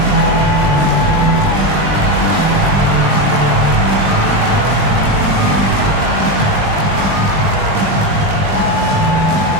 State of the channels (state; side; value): late; left; 20 ms